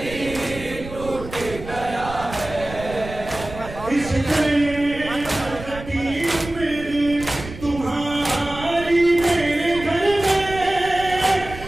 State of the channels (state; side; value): noise; right; rumble, 13 dB below the sound